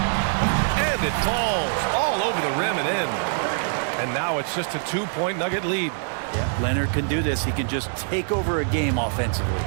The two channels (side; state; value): left; silent; digital silence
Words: And it falls all over the rim and in. And now it's just a 2-point Nugget lead. Yeah, Leonard can do this. He can just take over a game offensively.